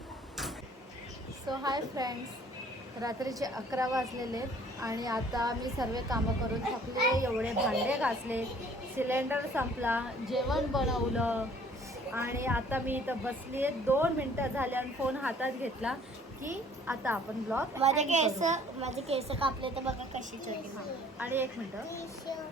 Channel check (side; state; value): both; normal; correlation 0.55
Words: सो हाय फ्रेंड्स, रात्रीचे 11 वाजलेले आहेत आणि आता मी सर्व कामं करून थकले. एवढे भांडे घासले, सिलेंडर संपला, जेवण बनवलं आणि आता मी इथं बसली आहे. 2 मिनटं झाले आणि फोन हातात घेतला की आता आपण ब्लॉग माझे केस कापले तर बघा कशी छोटी. आणि 1 मिनिट